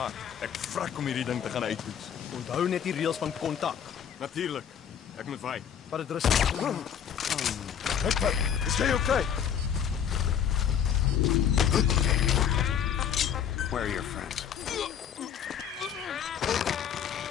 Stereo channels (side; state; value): right; quieter; 8.4 dB